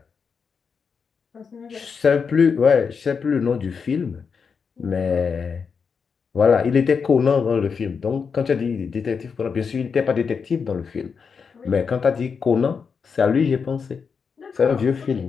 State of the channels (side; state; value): right; quieter; 5.9 dB